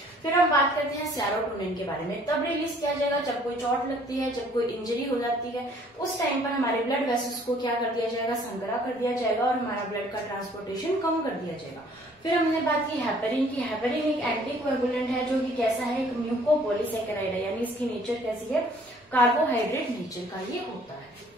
फिर हम बात करते हैं सेरोटोनिन के बारे में। तब रिलीज किया जाएगा जब कोई चोट लगती है, जब कोई इंजरी हो जाती है, उस टाइम पर हमारे ब्लड वेसल्स को क्या कर दिया जाएगा, संग्रह कर दिया जाएगा, और हमारा ब्लड का ट्रांसपोर्टेशन कम कर दिया जाएगा। फिर हमने बात की हेपेरिन की। हेपेरिन एक एंटीकोएगुलेंट है, जो कि कैसा है, एक म्यूकोपॉलीसैकेराइड है, यानी इसकी नेचर कैसी है, कार्बोहाइड्रेट नेचर का ये होता है।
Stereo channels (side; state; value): both; normal; correlation 0.58